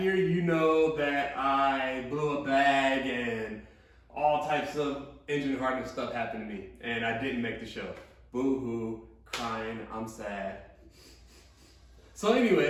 you know that I blew a bag and all types of engine hardening stuff happened to me, and I didn't make the show. Boo-hoo, crying, I'm sad. So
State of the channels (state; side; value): identical; both; correlation 1.00